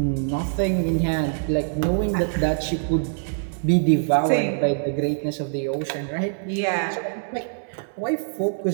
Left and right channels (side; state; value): left; silent; digital silence